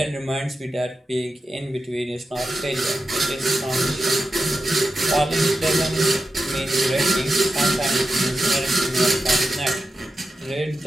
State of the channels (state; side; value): normal; both; correlation 0.90